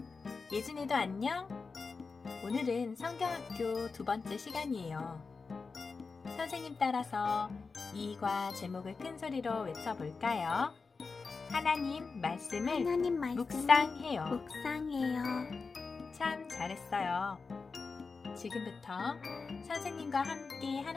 예진이도 안녕? 오늘은 성경학교 2번째 시간이에요. 선생님 따라서 이과 제목을 큰 소리로 외쳐볼까요? 하나님 말씀을 묵상해요. 참 잘했어요. 지금부터 선생님과 함께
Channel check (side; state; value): right; quieter; 4.5 dB